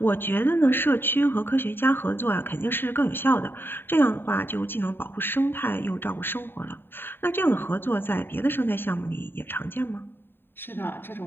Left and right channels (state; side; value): late; right; 0.10 ms